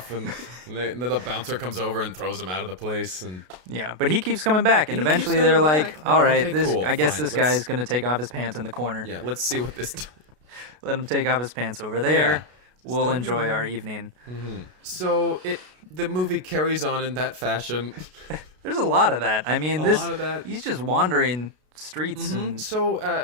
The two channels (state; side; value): late; left; 33 ms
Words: and then the bouncer comes over and throws him out of the place. And but he keeps coming back, and eventually they're like, "All right, okay, cool, I guess fine. this guy is going to take off his pants in the corner. Yeah, let's see what this. Let him take off his pants over there. We'll enjoy our evening." So the movie carries on in that fashion. There's a lot of that. I mean, lot of that. He's just wandering streets and So